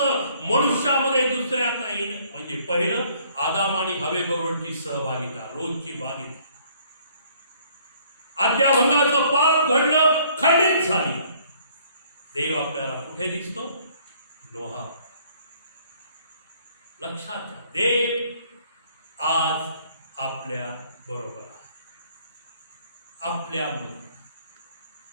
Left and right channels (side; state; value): both; inverted; correlation -0.61